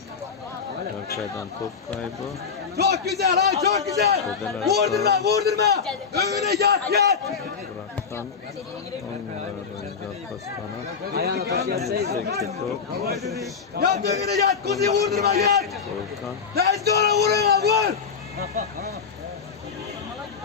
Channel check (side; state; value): right; quieter; 6.0 dB